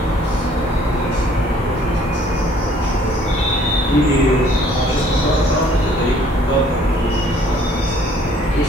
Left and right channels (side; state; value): both; normal; correlation 0.59